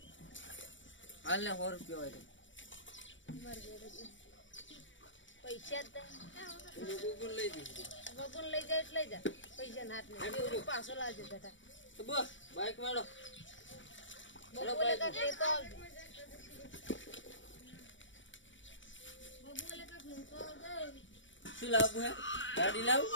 હાલ ને 100 રૂપિયા હોય પૈસા બબુન લઈ દી બબુન લઈ જાય એટલે લઈ જા પૈસા નાટ ને પાછો લાવજો બેટા તો બસ બાઈક મારો બબુલે કાક લેતો આવજો બબુલે કાક લેતો આવજો શું લાવવું હે ગાડી લાવ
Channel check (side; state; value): right; late; 0.55 ms